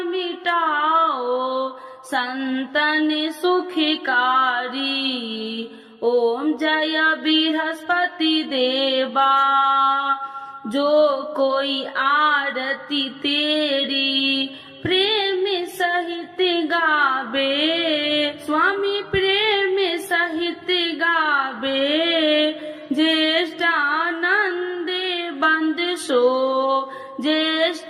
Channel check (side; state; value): both; identical; correlation 1.00